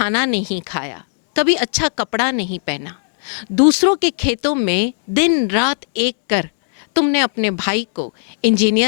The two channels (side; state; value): right; silent; 68 dB below the other